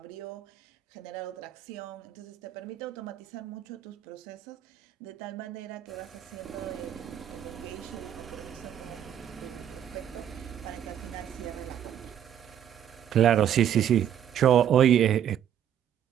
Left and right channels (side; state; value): left; quieter; 10.0 dB